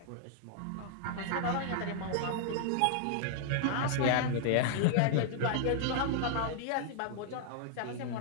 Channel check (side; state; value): both; different; correlation -0.01